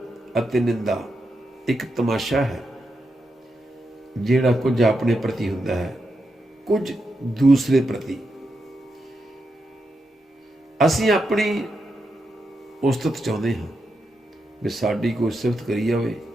अते निंदा एक तमाशा है जिहड़ा कुछ अपने प्रति हुंदा है, कुछ दूसरे प्रति। असीं अपनी उस्तत चाहुंदे हां भी साडी कोई सिफत करी जावे,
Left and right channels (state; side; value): normal; both; correlation 0.85